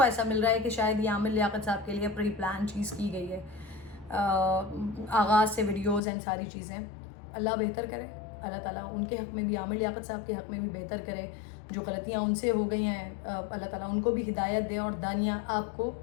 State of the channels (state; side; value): drops out; right; at 6.0 s